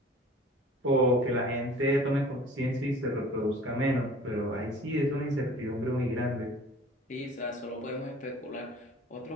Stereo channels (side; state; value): both; normal; correlation 0.47